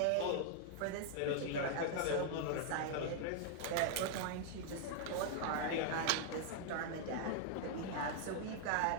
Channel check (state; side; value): different; both; correlation 0.00